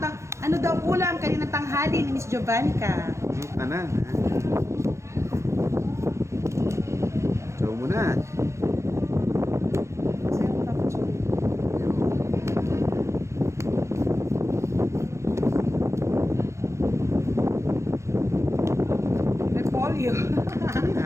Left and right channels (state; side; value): late; left; 0.14 ms